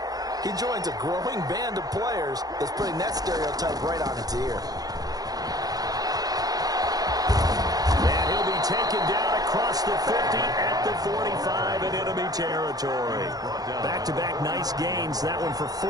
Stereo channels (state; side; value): late; left; 0.18 ms